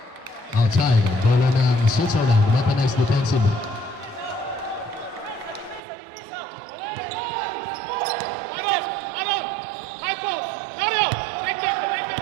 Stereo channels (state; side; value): drops out; left; at 5.8 s